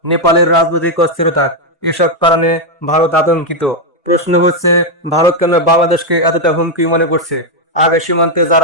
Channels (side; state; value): both; normal; correlation 0.01